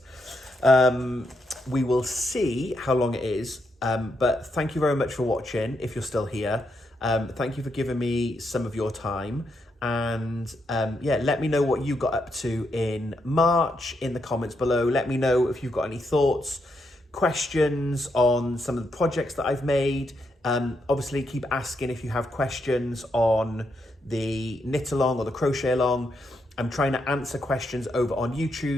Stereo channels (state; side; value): normal; both; correlation 0.80